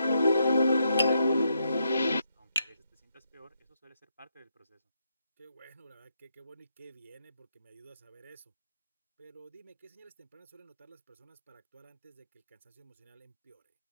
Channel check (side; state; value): both; inverted; correlation -0.80